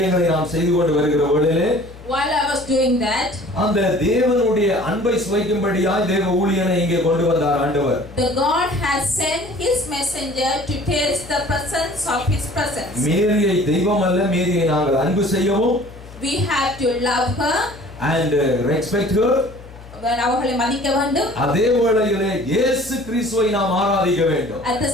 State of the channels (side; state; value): left; noise; hum, 18 dB below the sound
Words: நாம் செய்து கொண்டு வருகிற வேளையிலே while I was doing that, அந்த தேவனுடைய அன்பை சுவைக்கும்படியாய் தேவ ஊழியனை இங்கே கொண்டு வந்தார் ஆண்டவர். The God has sent his messenger to taste the presence of his presence. மேரியை தெய்வம் அல்ல, மேரியை நாங்கள் அன்பு செய்யவும், we have to love her and respect her, அவர்களை மதிக்க வேண்டும். அதே வேளையிலே இயேசு கிறிஸ்துவை நாம் ஆராதிக்க வேண்டும். At the